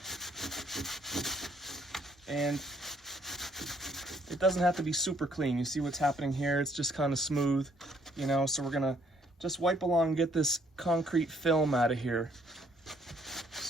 and it doesn't have to be super clean. You see what's happening here? It's just kind of smooth, you know, so we're gonna just wipe along and get this concrete film out of here.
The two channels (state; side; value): normal; both; correlation 0.66